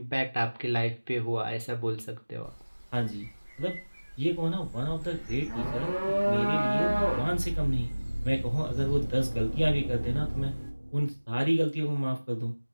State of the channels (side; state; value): both; inverted; correlation -1.00